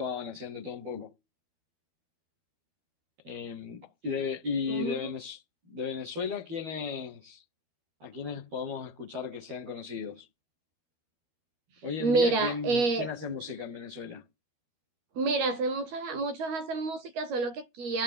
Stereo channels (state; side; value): late; left; 12 ms